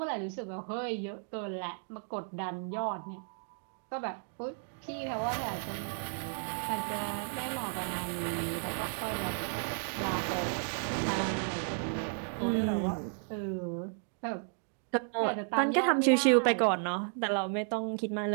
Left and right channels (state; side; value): silent; left; 55 dB below the other